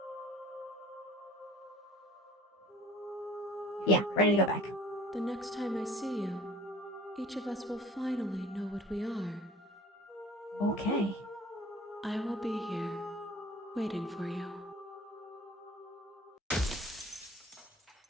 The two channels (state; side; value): normal; both; correlation 0.47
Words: Yeah, ready to go back. The next time I see you, each of us will finally know what we are. Okay. I will be here, waiting for you.